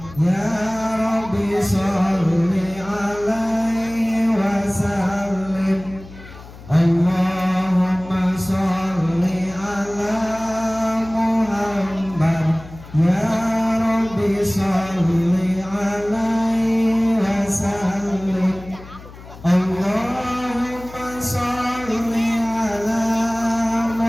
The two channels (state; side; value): noise; left; hum, 17 dB below the sound